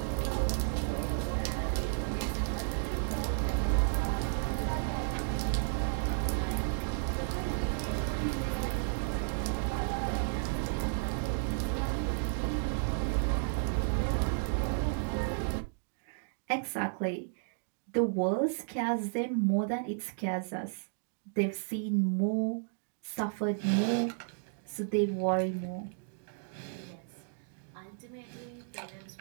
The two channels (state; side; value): silent; left; digital silence